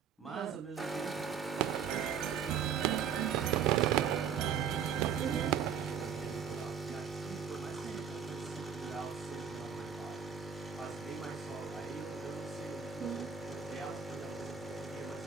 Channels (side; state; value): left; quieter; 7.6 dB